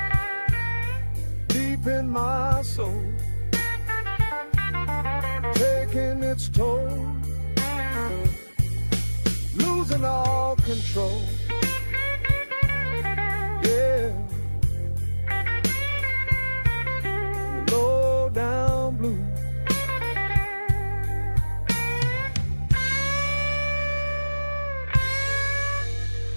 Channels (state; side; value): inverted; both; correlation -1.00